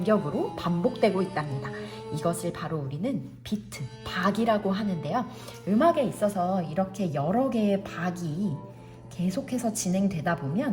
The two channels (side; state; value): both; identical; correlation 1.00